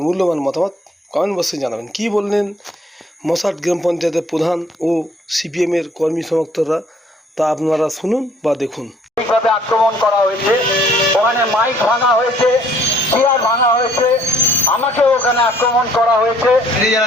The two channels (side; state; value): both; normal; correlation 0.61